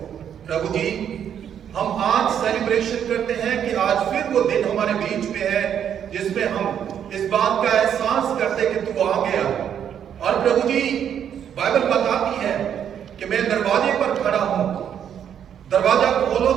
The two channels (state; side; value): quieter; left; 9.0 dB